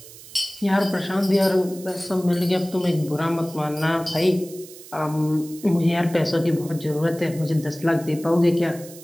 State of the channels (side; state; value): right; noise; hiss, 18 dB below the sound